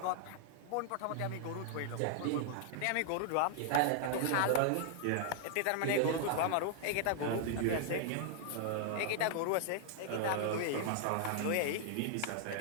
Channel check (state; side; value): different; both; correlation -0.01